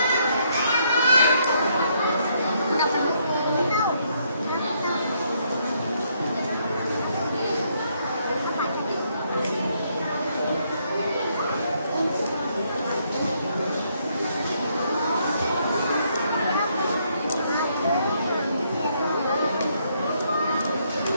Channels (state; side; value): inverted; both; correlation -0.72